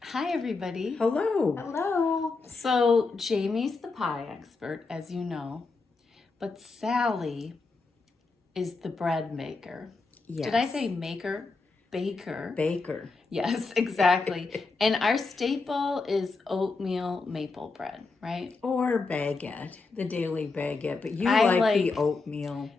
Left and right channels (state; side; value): quieter; right; 4.0 dB